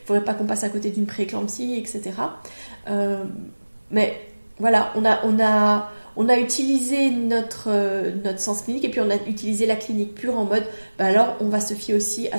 faudrait pas qu'on passe à côté d'une prééclampsie, etc. Mais voilà, on a utilisé notre sens clinique et puis on a utilisé la clinique pure en mode alors on va se fier aussi à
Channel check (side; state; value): both; inverted; correlation -1.00